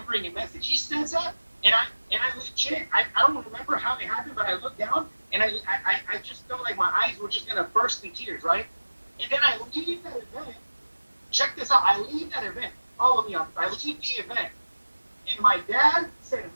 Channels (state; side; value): inverted; both; correlation -1.00